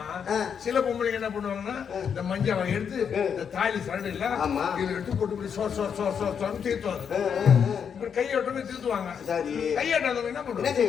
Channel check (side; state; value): right; quieter; 7.3 dB